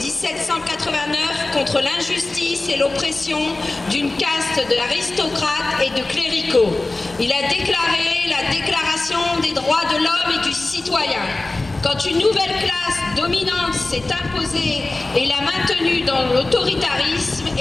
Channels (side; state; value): right; quieter; 3.0 dB